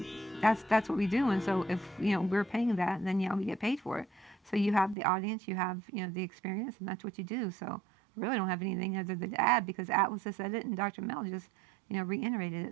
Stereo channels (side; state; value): left; drops out; at 5.0 s